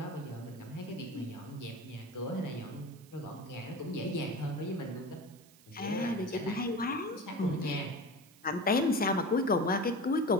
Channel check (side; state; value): right; noise; hiss, 25 dB below the sound